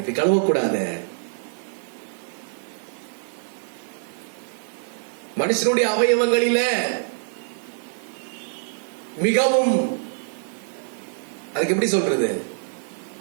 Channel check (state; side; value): silent; left; digital silence